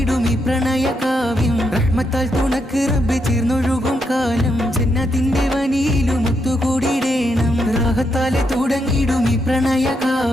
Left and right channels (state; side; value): normal; both; correlation 0.80